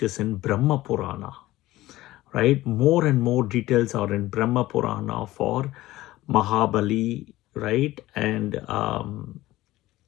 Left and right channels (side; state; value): right; quieter; 16.9 dB